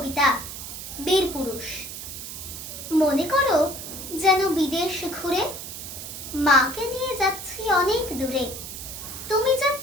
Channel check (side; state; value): right; noise; hiss, 9 dB below the sound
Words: বীরপুরুষ। মনে করো যেন বিদেশ ঘুরে মাকে নিয়ে যাচ্ছি অনেক দূরে। তুমি